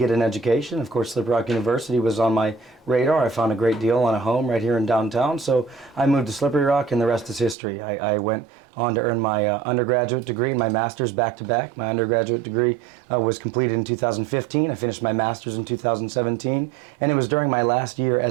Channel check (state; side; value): drops out; left; at 7.6 s